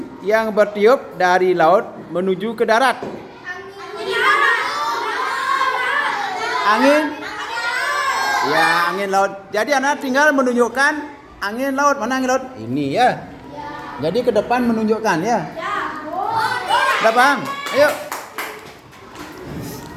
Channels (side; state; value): both; identical; correlation 1.00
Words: yang bertiup dari laut menuju ke darat. Angin? Ya, angin laut. Jadi anak tinggal menunjukkan angin laut. Mana angin laut? Ini ya. Jadi ke depan menunjukkan ya. Udah paham? Ayo.